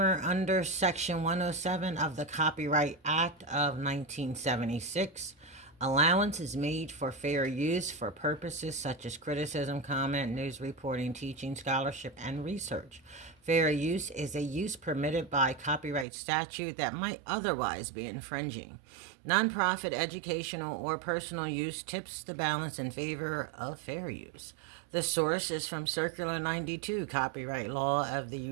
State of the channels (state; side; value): drops out; left; at 16.1 s